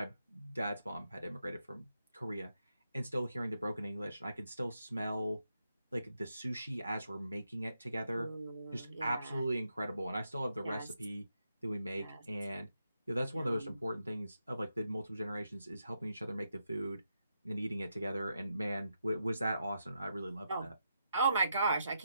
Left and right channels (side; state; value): both; inverted; correlation -0.83